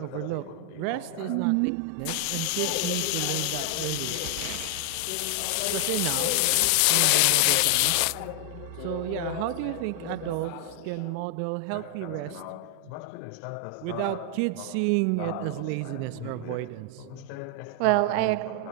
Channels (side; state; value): both; different; correlation 0.00